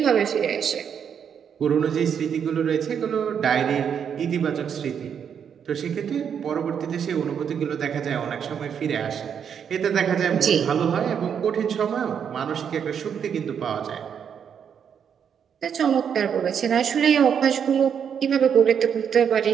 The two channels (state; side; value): quieter; left; 7.7 dB